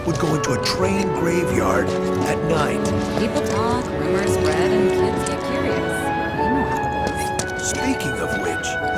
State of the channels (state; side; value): identical; both; correlation 1.00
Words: would go into a train graveyard at night. People talk, rumors spread, and kids get curious. Speaking of which,